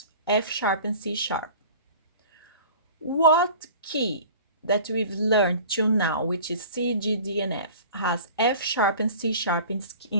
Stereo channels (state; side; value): inverted; both; correlation -0.42